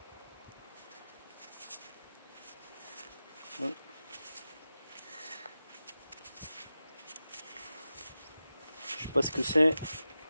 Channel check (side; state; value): both; inverted; correlation -0.93